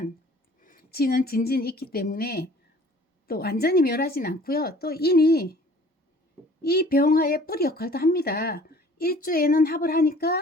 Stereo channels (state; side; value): normal; both; correlation 0.51